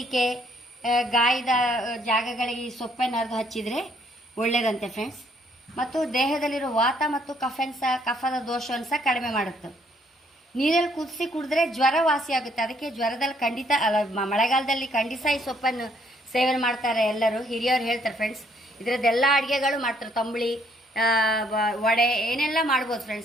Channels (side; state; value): both; normal; correlation 0.67